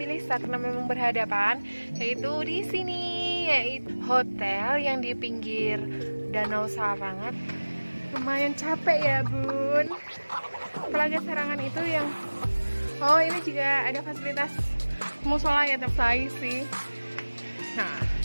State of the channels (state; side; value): inverted; both; correlation -1.00